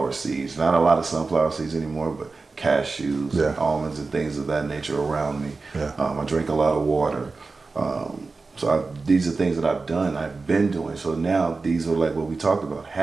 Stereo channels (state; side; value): quieter; left; 4.0 dB